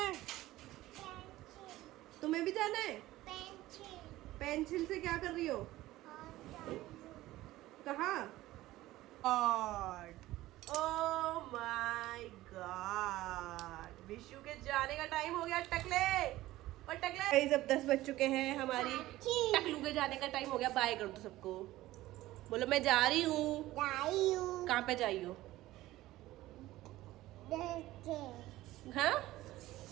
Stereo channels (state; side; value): quieter; left; 16.5 dB